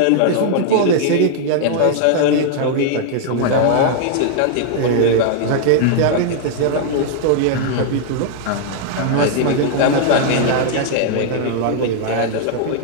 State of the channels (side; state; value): both; different; correlation -0.01